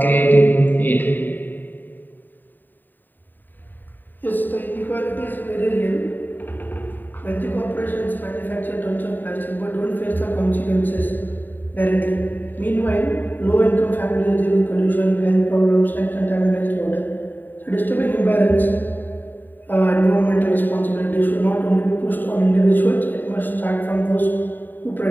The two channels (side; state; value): right; late; 0.090 ms